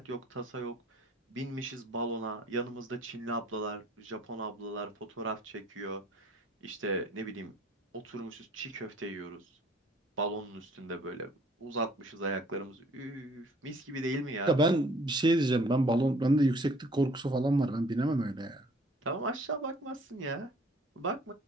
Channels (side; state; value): both; normal; correlation 0.56